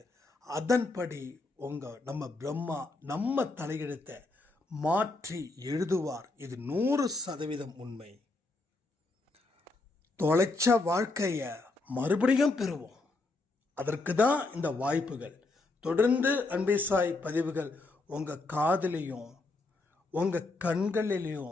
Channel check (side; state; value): right; quieter; 3.3 dB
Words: அதன்படி நம்ம பிரம்மா நம்ம தலையெழுத்தை மாற்றி எழுதுவார். இது 100% உண்மை. தொலைச்ச வாழ்க்கையை மறுபடியும் பெறுவோம். அதற்கு தான் இந்த வாய்ப்புகள். தொடர்ந்து அன்பே சாய் பதிவுகள் உங்கள் காதிலையும் உங்கள்